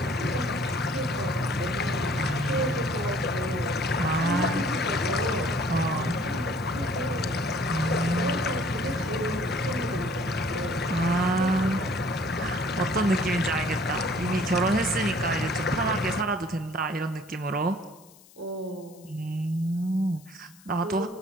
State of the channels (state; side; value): noise; left; hiss, 25 dB below the sound